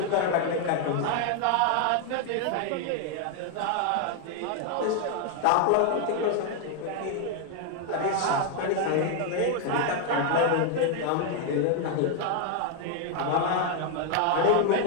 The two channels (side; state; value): both; different; correlation 0.01